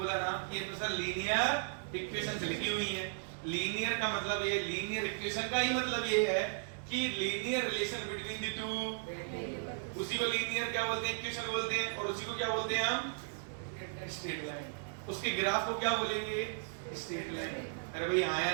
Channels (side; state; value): left; silent; digital silence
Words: ना कि ये तो सर लीनियर इक्वेशन से लिखी हुई है। लीनियर का मतलब ये, लीनियर इक्वेशन का ही मतलब ये है कि linear relation between the two, उसी को लीनियर क्या बोलते हैं? इक्वेशन बोलते हैं। और उसी को क्या बोलते हैं हम? Straight line. उसके ग्राफ को क्या बोलेंगे? Straight line. अरे भाई हाँ